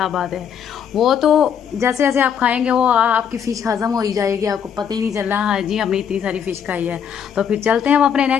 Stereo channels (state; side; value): quieter; right; 8.0 dB